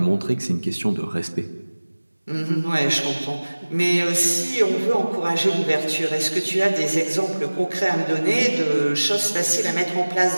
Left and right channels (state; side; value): inverted; both; correlation -1.00